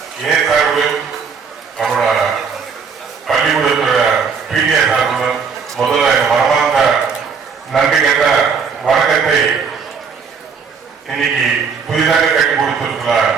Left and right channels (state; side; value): quieter; left; 5.9 dB